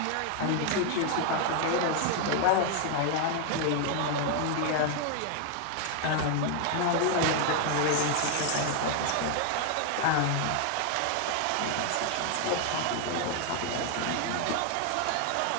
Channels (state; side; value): different; both; correlation 0.00